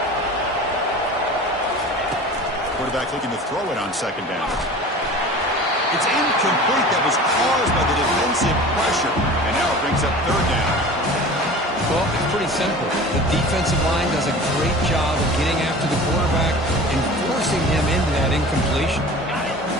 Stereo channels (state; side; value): normal; both; correlation 0.39